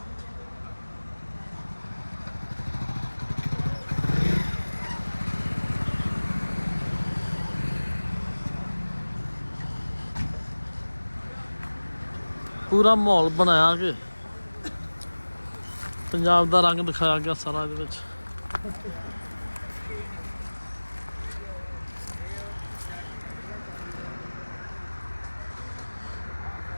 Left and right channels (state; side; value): inverted; both; correlation -1.00